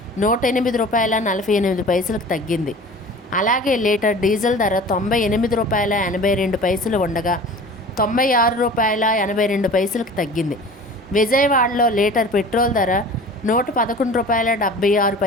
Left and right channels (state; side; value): normal; both; correlation 0.41